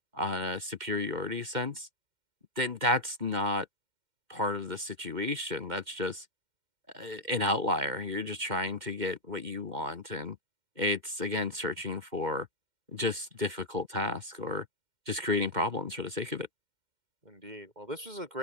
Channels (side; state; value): left; late; 2.1 ms